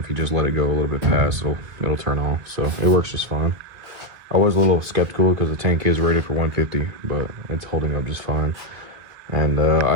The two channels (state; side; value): late; left; 2.1 ms